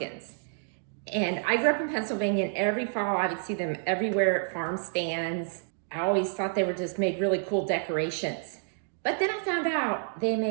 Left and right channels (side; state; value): left; silent; digital silence